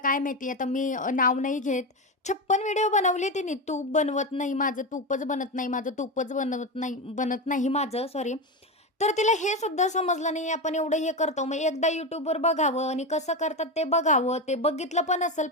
काय माहिती आता मी नाव नाही घेत. 56 व्हिडिओ बनवले तिने. तूप बनवत नाही माझं, तूपच बनत नाही माझं, तूपच बनत नाही माझं सॉरी. तर तिला हे सुद्धा समजलं नाही आपण एवढं हे करतो. मग एकदा YouTubeवर बघावं आणि कसं करतात ते बघावं. ते बघितलं पण असेल,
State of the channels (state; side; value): normal; both; correlation 0.16